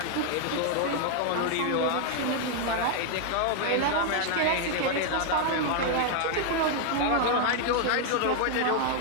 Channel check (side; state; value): both; different; correlation 0.00